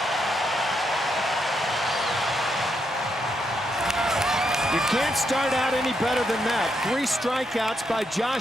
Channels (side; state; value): both; normal; correlation 0.79